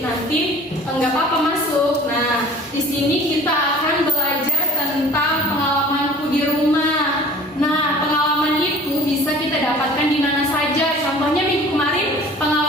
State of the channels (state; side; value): normal; both; correlation 0.46